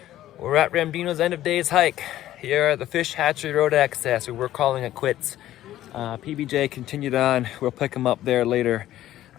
We're at Ramdino's end of days hike here at the Fish Hatchery Road access. We're calling it quits. PBJ continued on. We'll pick him up there later.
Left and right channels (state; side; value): quieter; right; 13.5 dB